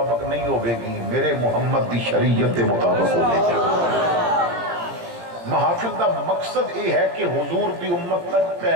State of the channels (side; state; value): left; late; 18 ms